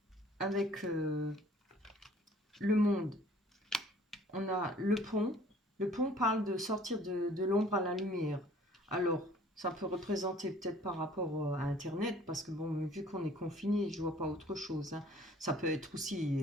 avec le monde, on a le pont. Le pont parle de sortir de l'ombre à la lumière. Alors, ça peut représenter peut-être par rapport à Internet, parce que bon, vu qu'on est confiné, je vois pas autre chose, hein. Ça peut être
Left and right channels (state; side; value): normal; both; correlation 0.54